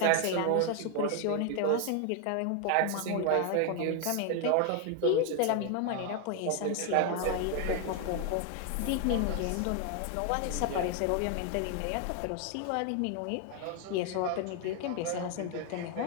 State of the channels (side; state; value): both; different; correlation 0.01